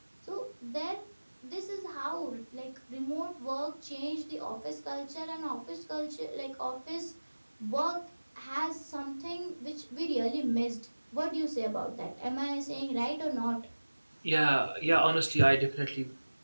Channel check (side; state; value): both; inverted; correlation -1.00